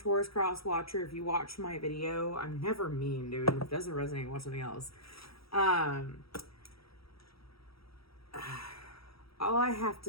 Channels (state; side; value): late; right; 0.75 ms